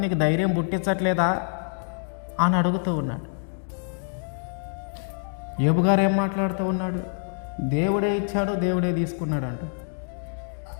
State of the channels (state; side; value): silent; right; 61 dB below the other